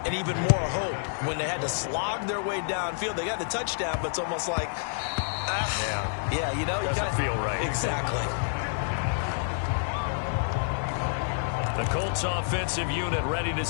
and even more hope. When they had to slog their way downfield, they got the touchdown, but it's almost like, yeah, you know, doesn't feel right. Exactly. The Colts offensive unit ready to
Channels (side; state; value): right; silent; 56 dB below the other